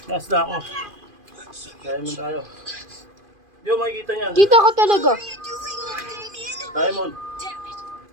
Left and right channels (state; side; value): late; left; 2.5 ms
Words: Last na ako. Diamond tayo. Hindi mo makikita niyan. Kita ka talaga. What are you doing, Lord Damien? Diamond. Damn it.